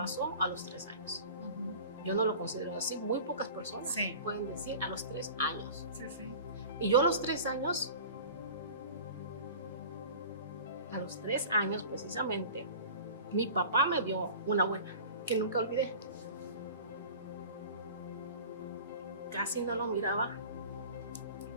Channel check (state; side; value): inverted; both; correlation -0.40